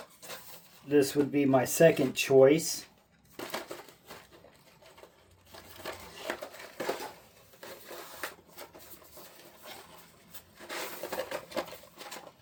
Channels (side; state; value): both; identical; correlation 1.00